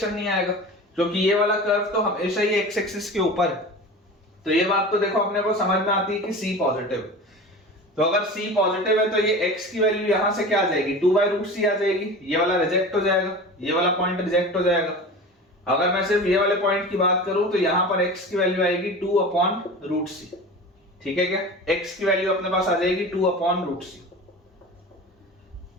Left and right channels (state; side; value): normal; both; correlation 0.34